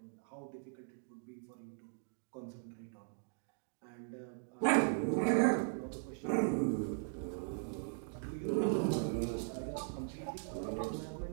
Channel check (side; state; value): left; silent; digital silence